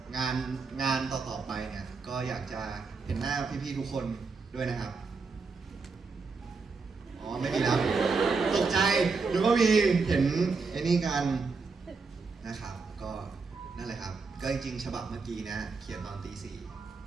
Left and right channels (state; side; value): quieter; left; 4.6 dB